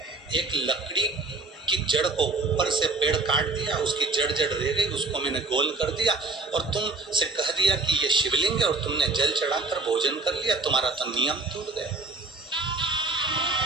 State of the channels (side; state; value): left; quieter; 3.5 dB